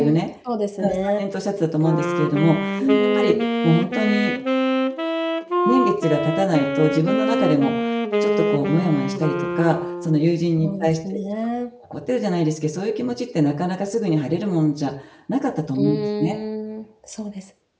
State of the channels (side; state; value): both; identical; correlation 1.00